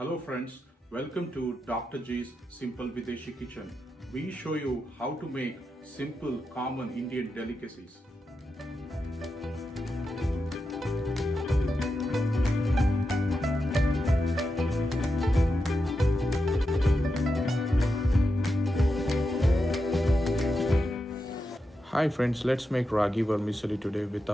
Hello friends, welcome to Dr. G's Simple Videshi Kitchen. We show you how to make simple, common Indian delicacies. Hi friends, let's make Ragi Vermicelli today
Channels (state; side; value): normal; both; correlation 0.87